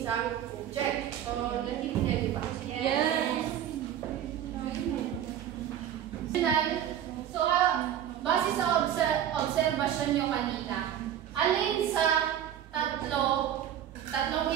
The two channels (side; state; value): left; quieter; 10.5 dB